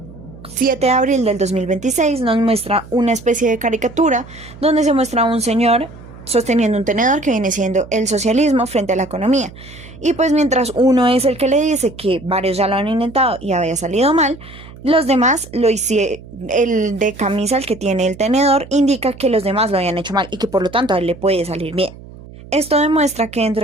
7 de abril del 2026 nos muestra una especie de caricatura donde se muestra a un señor sosteniendo un tenedor que viene siendo el socialismo frente a la economía. Y pues mientras uno es el que le dice que varios ya lo han intentado y había salido mal, los demás lo hicieron. El de camisa, el que tiene el tenedor, indica que los demás lo habían hecho mal y que por lo tanto a él le puede salir bien. Esto demuestra que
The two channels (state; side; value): noise; right; hum, 18 dB below the sound